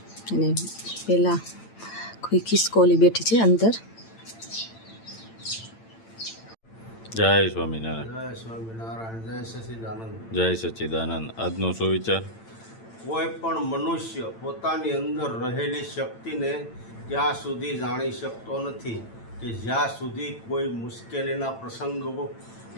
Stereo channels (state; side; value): late; right; 8.9 ms